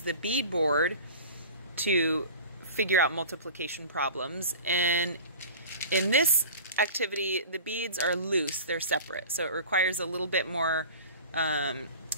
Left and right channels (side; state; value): both; inverted; correlation -0.38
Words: the bead board to figure out multiplication problems. And in this activity, the beads are loose, they're separate, so it requires a little bit more